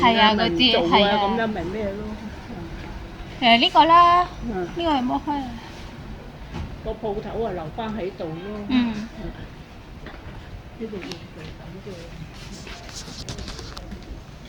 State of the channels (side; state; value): both; identical; correlation 1.00